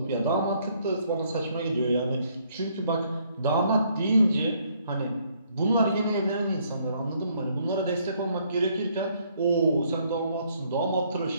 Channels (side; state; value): both; inverted; correlation -0.68